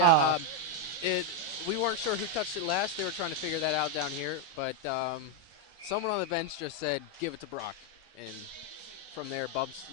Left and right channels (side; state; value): both; normal; correlation 0.02